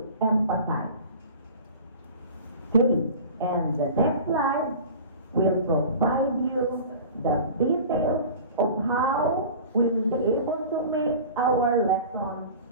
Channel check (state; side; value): inverted; both; correlation -0.39